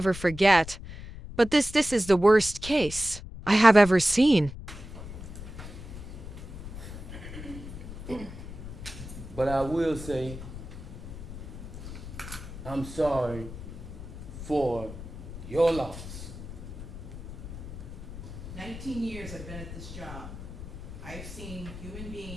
forget. But this is the worst case I have ever seen. But I will say, I'm sorry for your loss. 19 years I've been at this job. I've seen human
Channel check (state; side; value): noise; left; rumble, 11 dB below the sound